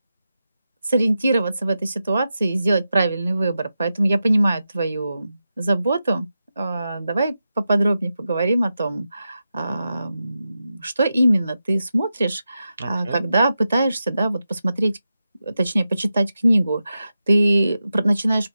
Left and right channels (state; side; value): inverted; both; correlation -0.90